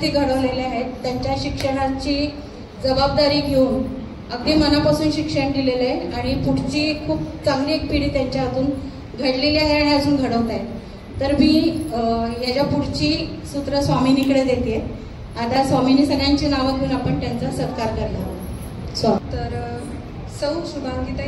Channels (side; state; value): both; identical; correlation 1.00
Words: घडवलेले आहेत. त्यांच्या शिक्षणाची जबाबदारी घेऊन अगदी मनापासून शिक्षण दिलेलं आहे आणि पुढची खूप चांगली एक पिढी त्यांच्या हातून घडलेली आहे आणि अजून घडवत आहे. तर मी याच्या पुढची सूत्र स्वामिनीकडे देते. आता स्वामिनी सगळ्यांची नावं घेऊन आपण त्यांचा सत्कार करणार. तर सौ